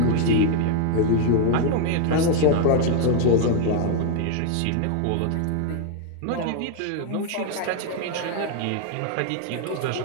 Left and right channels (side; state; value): both; different; correlation 0.01